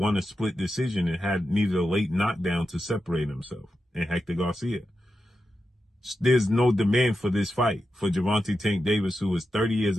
a split decision and needed a late knockdown to separate himself and Hector Garcia. There's no demand for this fight for Gervonta Tank Davis, who is 30 years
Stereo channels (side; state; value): both; normal; correlation 0.89